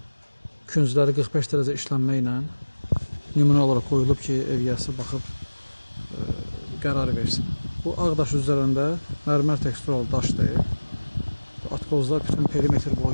küncləri 45 dərəcə işlənmə ilə nümunə olaraq qoyulub ki, ev yəsi baxıb qərar versin. Bu ağ daş üzərində mərmər teksturalı daşdır. Atkozlar bütün perimetr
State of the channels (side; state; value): both; inverted; correlation -1.00